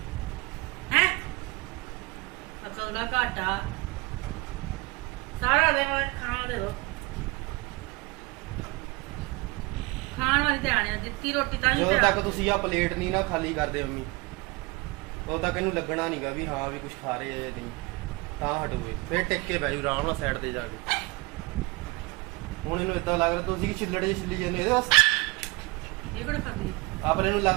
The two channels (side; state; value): left; quieter; 25.3 dB